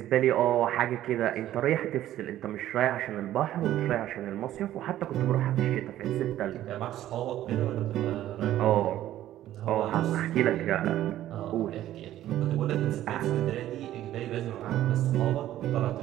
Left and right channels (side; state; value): left; quieter; 13.2 dB